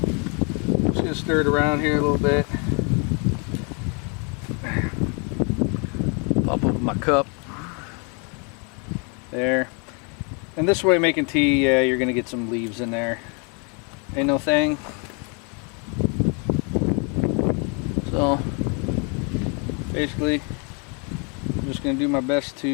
I'm just gonna stir it around here a little bit. Pop open my cup. There. And this way making tea, you're gonna get some leaves in there. Ain't no thing. So basically, I'm just gonna do my best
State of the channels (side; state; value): right; quieter; 35.6 dB